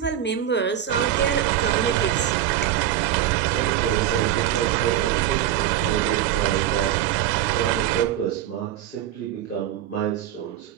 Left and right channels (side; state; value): left; quieter; 11.4 dB